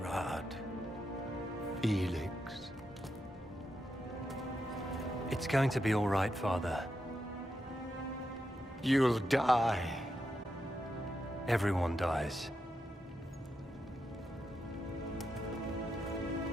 Felix. It's going to be all right, Father. You'll die. Everyone dies.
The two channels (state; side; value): normal; both; correlation 0.85